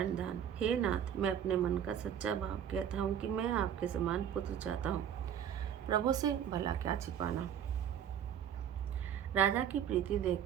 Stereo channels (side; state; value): left; quieter; 9.2 dB